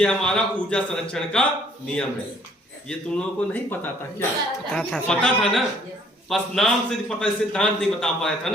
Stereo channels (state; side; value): normal; both; correlation 0.61